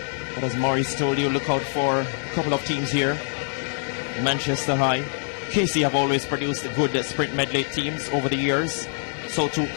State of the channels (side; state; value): right; silent; 62 dB below the other